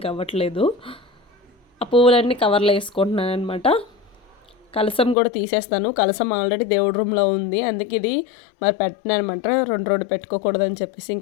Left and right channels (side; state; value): right; drops out; at 5.2 s